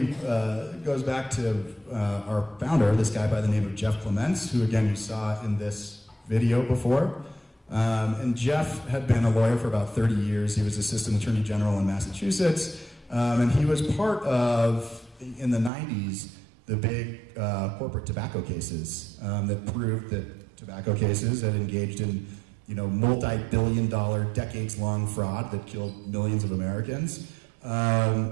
goes back to our founder, this guy by the name of Jeff Clements, who again you saw in this video before. And Jeff had been a lawyer for about 30 years. He was Assistant Attorney General in Massachusetts, and he was part of, in the 90s, the big corporate tobacco cases that proved that tobacco cases had engaged in, multi-billion-dollar, decades-long fraud that killed millions of Americans.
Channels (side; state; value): left; drops out; at 15.7 s